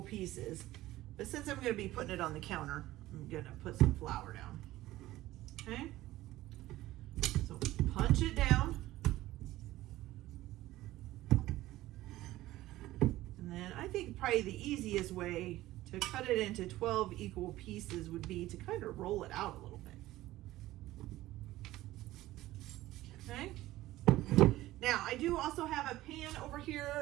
pieces. But since I'm gonna be putting it on the counter, I'm gonna put some flour down, okay? So punch it down. And then I think probably the easiest way to cut it into 12 equal pieces would be to kind of roll it out a little bit. Okay. Now I do also have a pan over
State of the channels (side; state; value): left; quieter; 16.3 dB